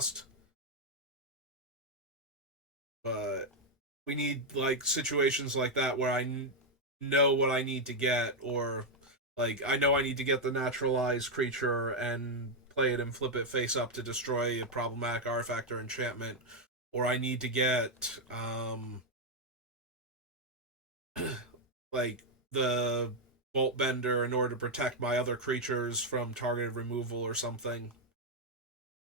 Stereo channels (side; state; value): both; normal; correlation 0.01